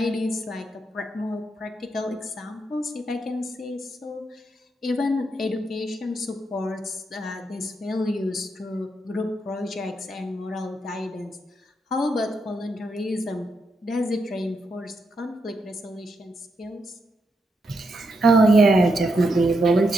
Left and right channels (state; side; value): normal; both; correlation 0.82